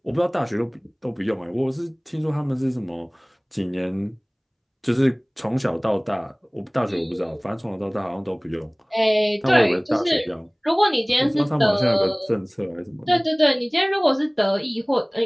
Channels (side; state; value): both; identical; correlation 1.00